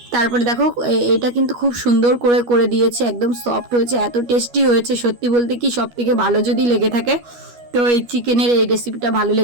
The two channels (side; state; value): left; late; 12 ms